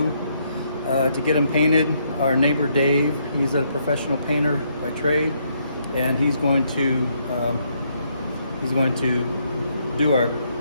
to get them painted. Our neighbor Dave, he's a professional painter by trade, and he's going to do our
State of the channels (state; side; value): inverted; both; correlation -0.73